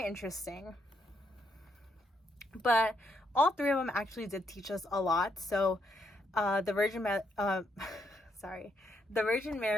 interesting. But all three of them actually did teach us a lot. So the Virgin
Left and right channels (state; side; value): normal; both; correlation 0.77